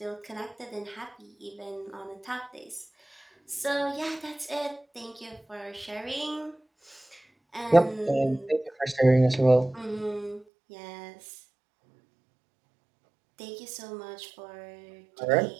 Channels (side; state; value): left; drops out; at 10.5 s